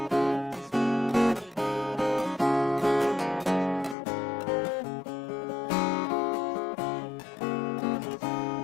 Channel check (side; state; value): right; drops out; at 4.0 s